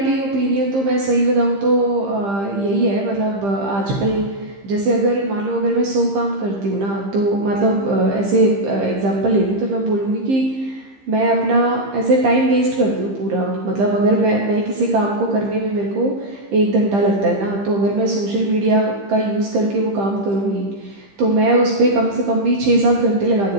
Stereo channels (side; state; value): left; late; 15 ms